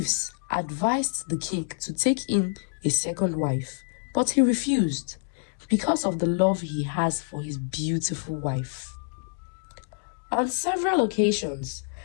advised the king to take in a second wife, but he refused because of the love he has for his beautiful wife. On several occasions,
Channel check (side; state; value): right; silent; digital silence